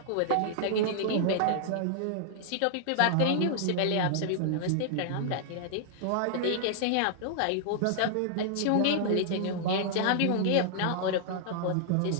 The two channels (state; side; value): different; both; correlation -0.01